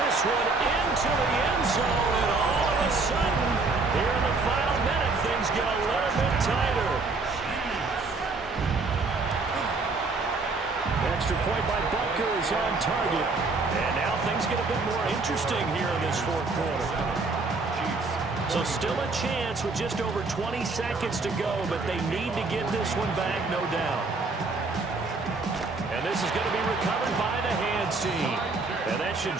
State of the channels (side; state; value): left; quieter; 3.8 dB